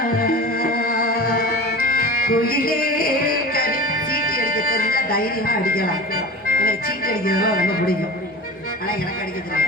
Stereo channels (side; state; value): both; normal; correlation 0.34